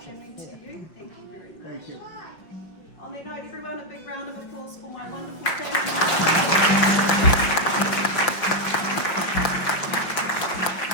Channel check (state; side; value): late; right; 5.7 ms